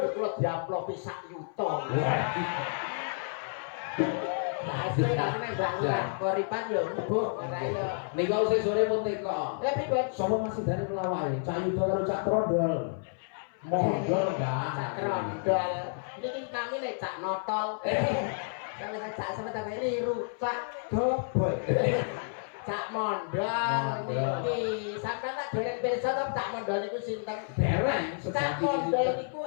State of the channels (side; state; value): right; silent; 56 dB below the other